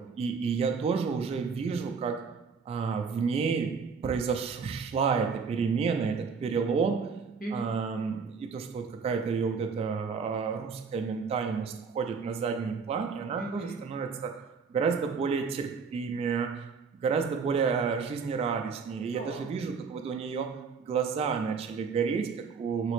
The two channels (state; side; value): quieter; left; 5.4 dB